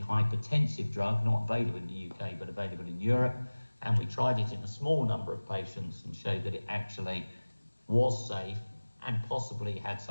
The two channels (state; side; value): inverted; both; correlation -1.00